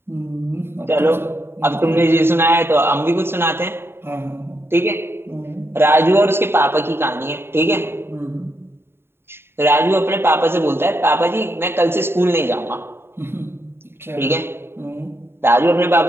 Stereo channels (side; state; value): left; late; 0.11 ms